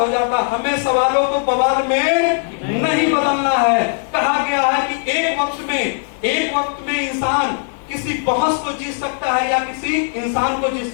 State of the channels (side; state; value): right; silent; 67 dB below the other